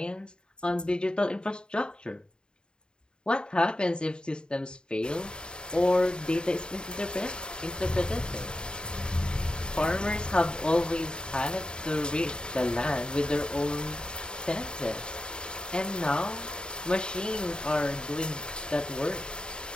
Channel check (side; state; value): right; late; 0.049 ms